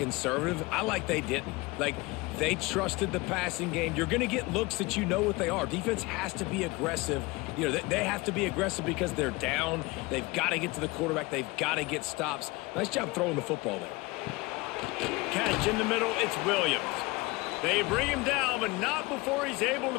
I like they didn't. Like, they trusted the passing game. You're going to get looks that you know what they are. Defense has to be aggressive. You know, they have to be aggressive because they're down. They've got to get to the quarterback. They've got to get stops. Nice job throwing the football there. Catch in the middle, it's Williams. They bring him down, but not before he's able to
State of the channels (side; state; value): right; quieter; 23.2 dB